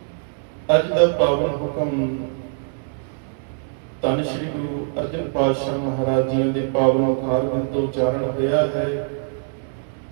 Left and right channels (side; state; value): left; silent; digital silence